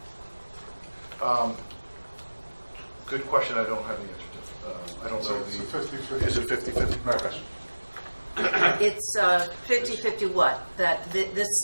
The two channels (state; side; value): inverted; both; correlation -1.00